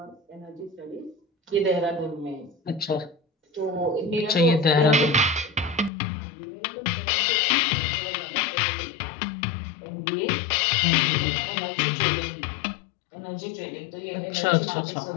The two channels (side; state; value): right; drops out; at 5.9 s